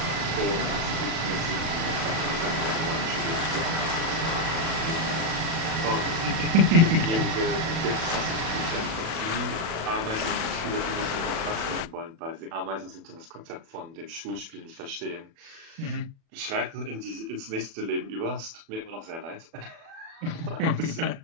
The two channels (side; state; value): left; late; 36 ms